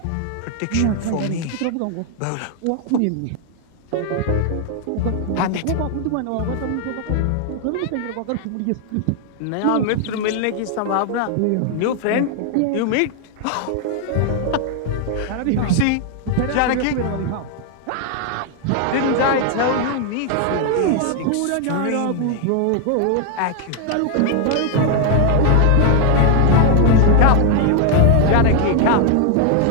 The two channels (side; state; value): both; different; correlation 0.00